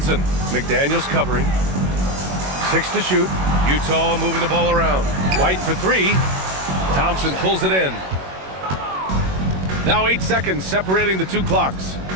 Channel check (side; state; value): left; late; 21 ms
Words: McDaniels covering. 6 to shoot. Utah moving the ball around. White for 3. Thompson pulls it in. Now 8 seconds separating the two clocks.